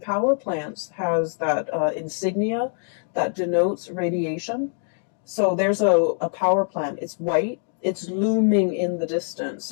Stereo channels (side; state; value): right; silent; 63 dB below the other